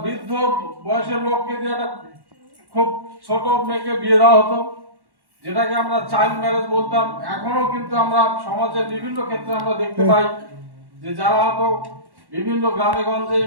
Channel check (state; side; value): late; left; 1.1 ms